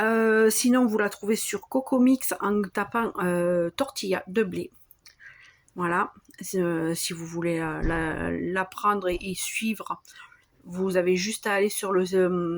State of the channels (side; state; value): both; identical; correlation 1.00